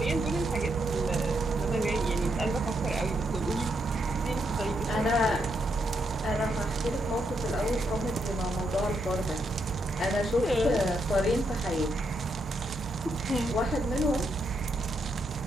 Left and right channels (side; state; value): both; normal; correlation 0.79